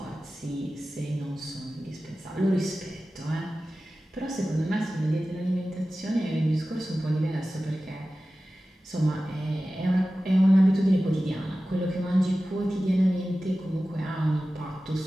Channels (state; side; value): normal; both; correlation 0.95